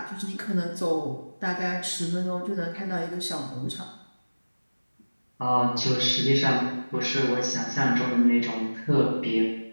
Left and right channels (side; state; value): both; inverted; correlation -1.00